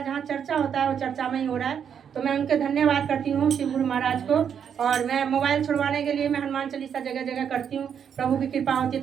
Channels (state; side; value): quieter; left; 7.9 dB